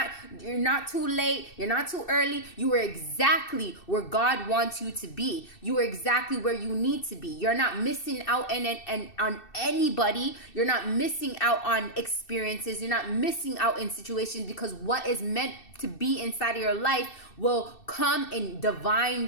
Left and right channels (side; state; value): right; late; 2.7 ms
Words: late, you're not too early. You are exactly where God wants you to be. You are exactly where you need to be. You're not missing out on anybody. You're not missing out on experiences. You're not missing out in situations, because what is meant to be inside of your life will come in